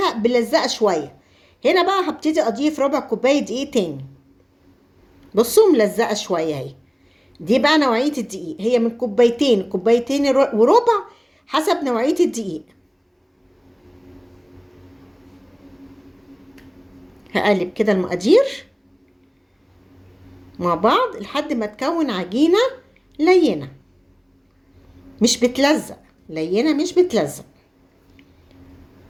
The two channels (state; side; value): identical; both; correlation 1.00